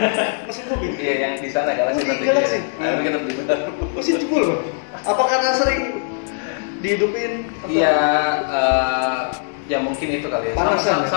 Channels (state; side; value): silent; right; 65 dB below the other